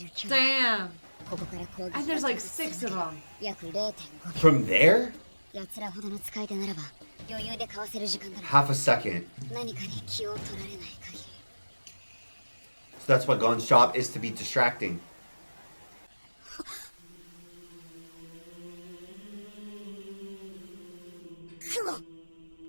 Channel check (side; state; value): both; inverted; correlation -1.00